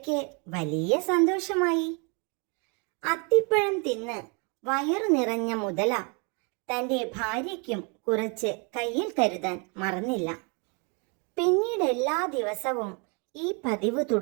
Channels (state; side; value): quieter; left; 34.1 dB